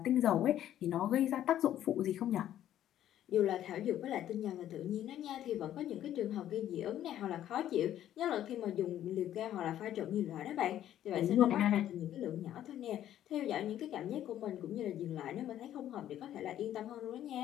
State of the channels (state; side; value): quieter; right; 11.7 dB